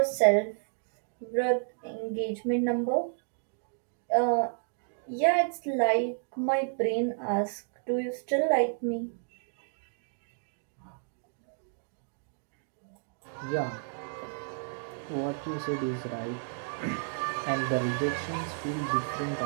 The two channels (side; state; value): left; silent; digital silence